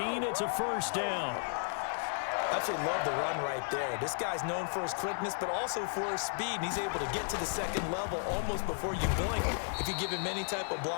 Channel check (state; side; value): silent; right; 55 dB below the other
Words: It's a first down. Absolutely love the run right there. This guy's known for his quickness, but also for his speed. And he's able to get to the second level almost before you blink if you give him any type of